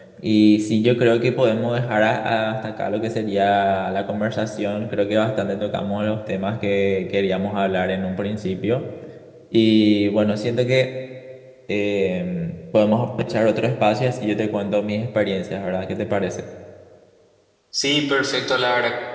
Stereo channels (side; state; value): both; identical; correlation 1.00